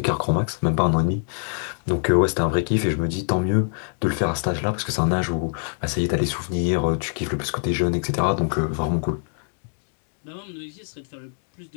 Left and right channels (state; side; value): silent; right; digital silence